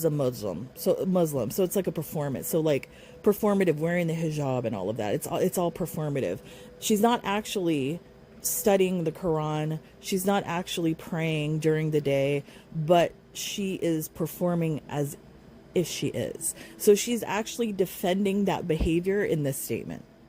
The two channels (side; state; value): both; identical; correlation 1.00